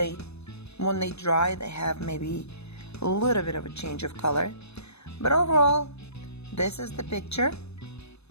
when they dry, they have maybe a little bit of a change of color. But overall, this is the picture.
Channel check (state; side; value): late; right; 0.80 ms